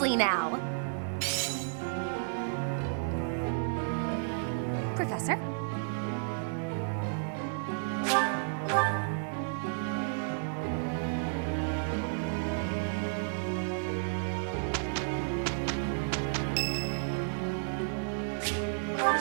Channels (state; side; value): silent; left; digital silence